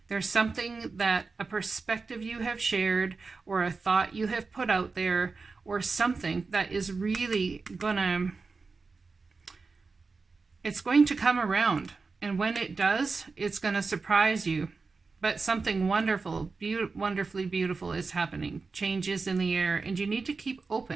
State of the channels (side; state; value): left; quieter; 4.3 dB